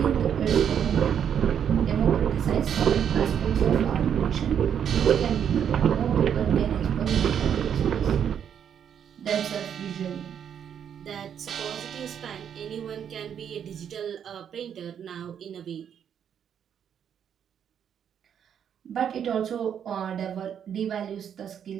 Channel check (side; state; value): left; quieter; 8.5 dB